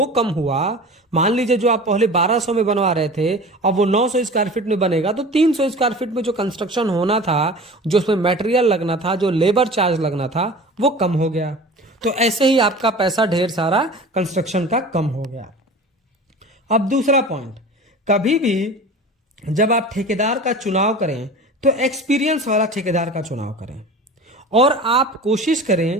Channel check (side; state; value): both; normal; correlation 0.37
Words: कम हुआ, मान लीजिए जो आप पहले 1200 में बनवा रहे थे अब वो 900 स्क्वायर फीट में बनेगा, तो 300 स्क्वायर फीट में जो कंस्ट्रक्शन होना था, जो उसमें मटेरियल लगना था, जो लेबर चार्ज लगना था, वो कम हो गया। तो ऐसे ही आपका पैसा ढेर सारा कंस्ट्रक्शन का कम हो गया। अब दूसरा पॉइंट, कभी भी जब आप ठेकेदार का चुनाव करें तो एक्सपीरियंस वाला ठेकेदार का चुनाव करें, और आप कोशिश